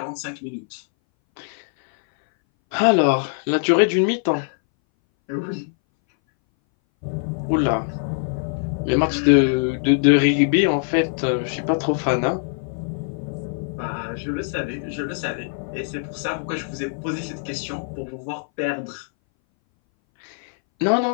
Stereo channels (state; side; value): silent; right; 61 dB below the other